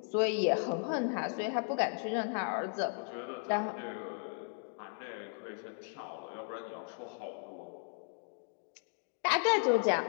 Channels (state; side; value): silent; right; 54 dB below the other